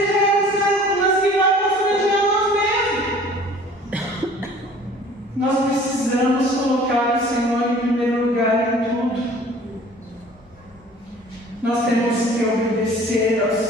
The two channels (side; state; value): both; normal; correlation 0.49